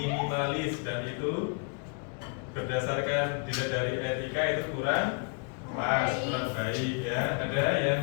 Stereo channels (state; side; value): quieter; right; 39.1 dB